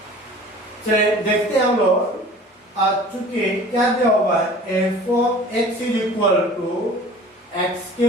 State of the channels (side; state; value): both; normal; correlation 0.44